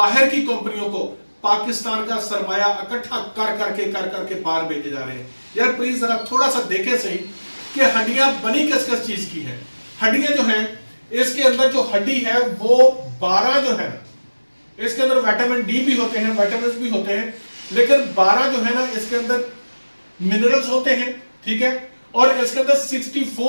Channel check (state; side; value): inverted; both; correlation -1.00